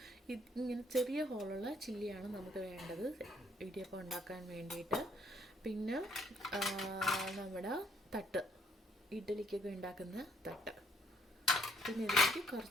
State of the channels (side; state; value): both; normal; correlation 0.67